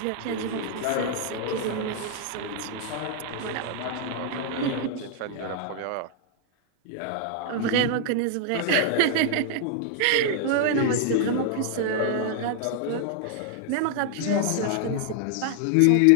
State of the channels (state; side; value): different; both; correlation 0.00